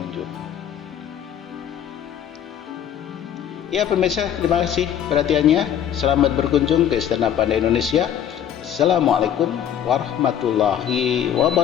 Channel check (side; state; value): right; quieter; 9.6 dB